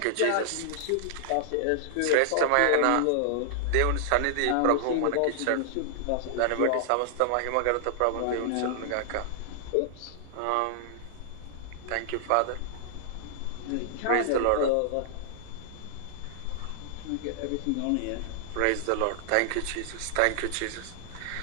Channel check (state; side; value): different; both; correlation -0.01